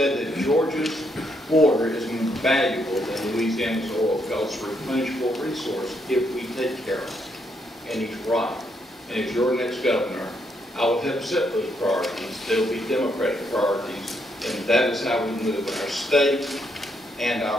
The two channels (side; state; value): both; normal; correlation 0.75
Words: that Georgia's water is more valuable than Louisiana's oil because it's a replenishable resource if we take care of it. And he's right. And as your next governor, I will help set those priorities. They'll be Democratic priorities, and that is how we move our state and